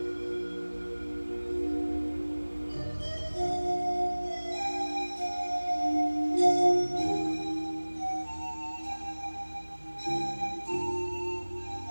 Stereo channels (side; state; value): both; inverted; correlation -1.00